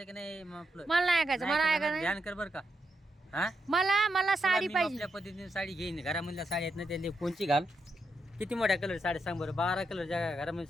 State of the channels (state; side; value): normal; both; correlation 0.83